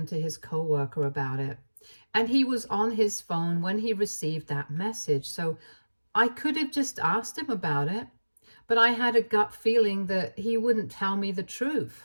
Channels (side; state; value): both; inverted; correlation -1.00